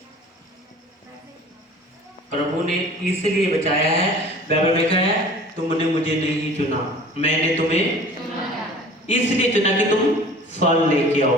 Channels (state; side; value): normal; both; correlation 0.45